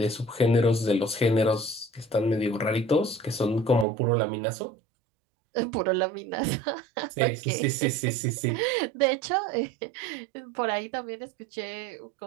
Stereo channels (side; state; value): left; drops out; at 3.9 s